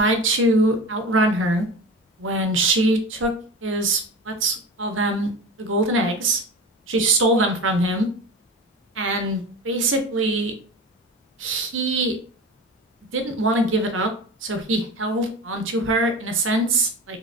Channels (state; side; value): normal; both; correlation 0.31